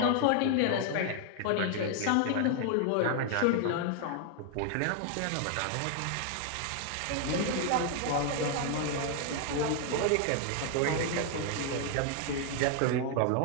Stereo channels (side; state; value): both; different; correlation 0.00